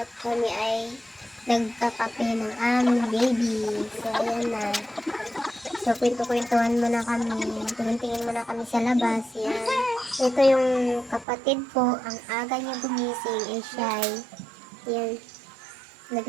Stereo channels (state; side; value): drops out; left; at 11.2 s